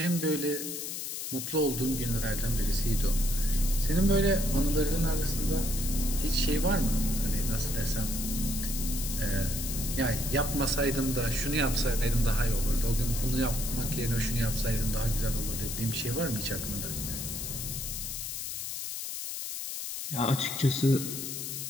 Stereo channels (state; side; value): noise; left; hiss, 5 dB below the sound